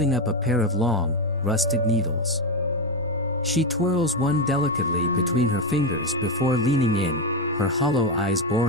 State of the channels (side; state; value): both; normal; correlation 0.10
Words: up a pair of long, rusted needles. She twirls one delicately between her fingers before leaning in, her hollow eyes